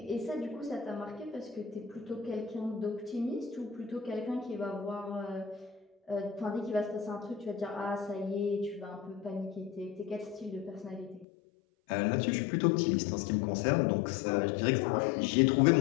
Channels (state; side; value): drops out; right; at 11.2 s